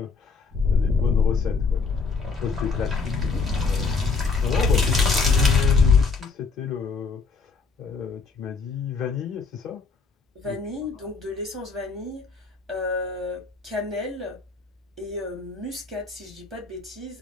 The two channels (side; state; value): right; quieter; 4.6 dB